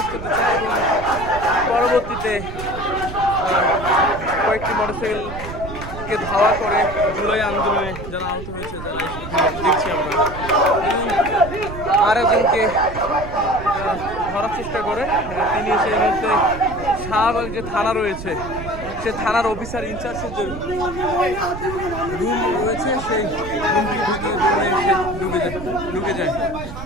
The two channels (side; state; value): right; noise; rumble, 10 dB below the sound